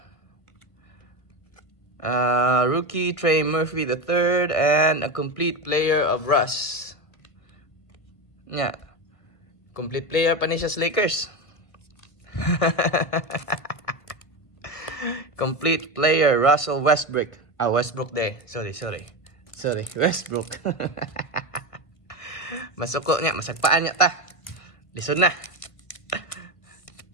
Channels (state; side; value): late; right; 1.5 ms